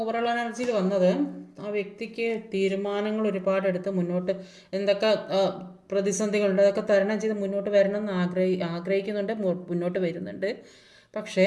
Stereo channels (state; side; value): identical; both; correlation 1.00